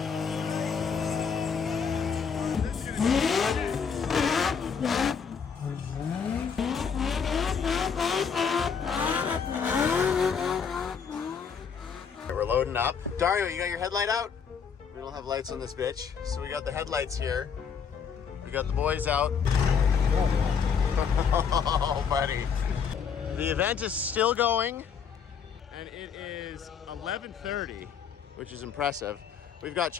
We're loading up. Dario, you got your headlight out? We don't have lights on this bitch, so we got the headlights here. We got the boys out. Oh, buddy. The event is still going, and it is 11:30, which is impressive. We've got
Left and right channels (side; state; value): right; quieter; 6.6 dB